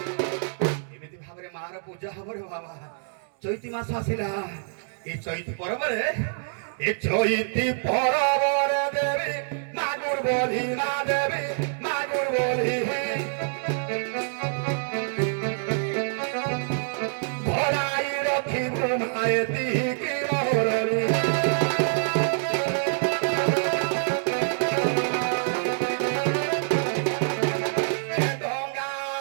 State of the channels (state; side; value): silent; left; digital silence